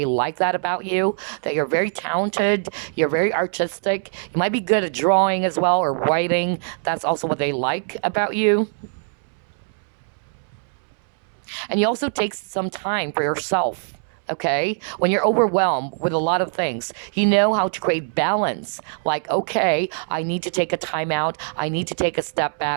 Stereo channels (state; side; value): silent; left; 64 dB below the other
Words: like that about you, that you're very talented, you're very artistic. You might be good at drawing as well or writing. That's also what they like about you. And you also take some time for yourself. Okay, when you're overwhelmed with a lot of things, you know how to create balance. Like, okay, I need to take a time out. I need to take a step